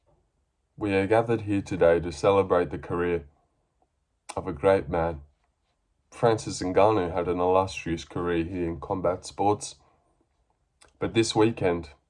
we are gathered here today to celebrate the career of a great man. Francis Ngannou had an illustrious career here in combat sports, but this weekend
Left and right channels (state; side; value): identical; both; correlation 1.00